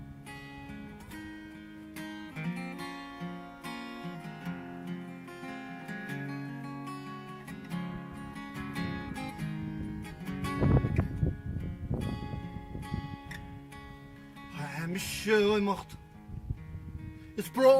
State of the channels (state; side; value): identical; both; correlation 1.00